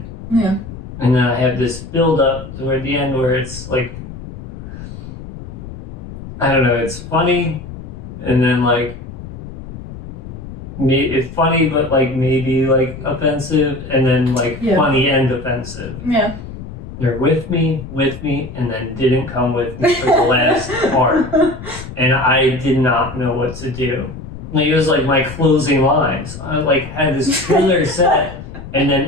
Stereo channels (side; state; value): left; noise; rumble, 12 dB below the sound